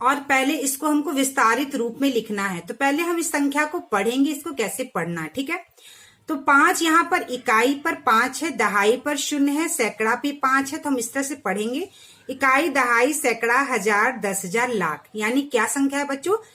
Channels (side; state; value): both; identical; correlation 1.00